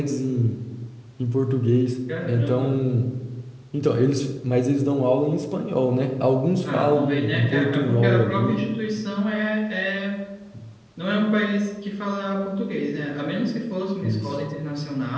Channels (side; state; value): both; identical; correlation 1.00